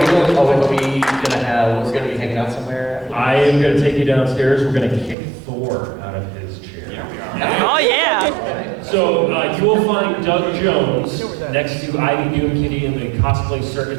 gonna be hanging out somewhere? I am going to take you downstairs. We're going to kick Thor out of his chair. Oh, yeah. So you will find Doug Jones next to Ivy Doom Kitty in the cosplay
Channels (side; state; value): left; drops out; at 5.2 s